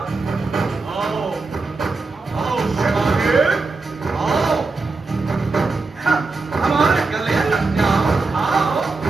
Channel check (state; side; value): quieter; left; 3.8 dB